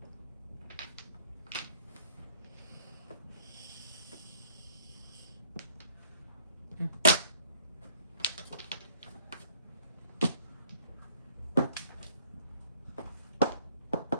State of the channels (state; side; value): inverted; both; correlation -0.59